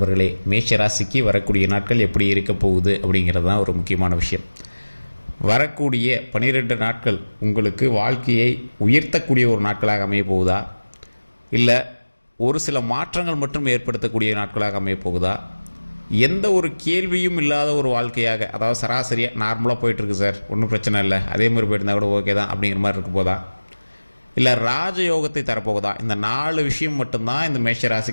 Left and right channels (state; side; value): inverted; both; correlation -1.00